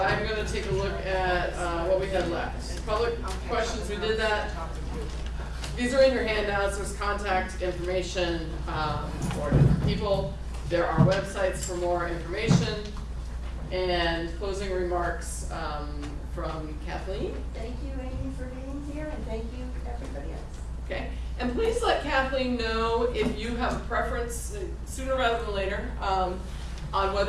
going to take a look at what we had left. Public questions, we did that. These are in your handouts. There's contact information for different people. There are websites for more information. And closing remarks from Kathleen. Thank you, Amy, for being here, and thank you, everybody else. Okay, and please let Kathleen know if you have a preference, sooner rather than later, on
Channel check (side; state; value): both; identical; correlation 1.00